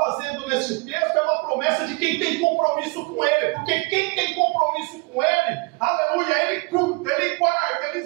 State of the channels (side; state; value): left; quieter; 27.9 dB